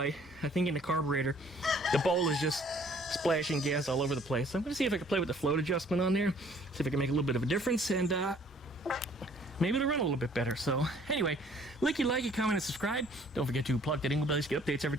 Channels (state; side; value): normal; both; correlation 0.58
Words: I think in the carburetor, the bowl is just splashing gas all over the place. So I'm going to see if I can play with the float adjustment on there, see if I can make a little bit of a difference, and maybe it'll run a little bit better. So anyway, like, comment, and subscribe. Don't forget to plug that dingle bell to get updates every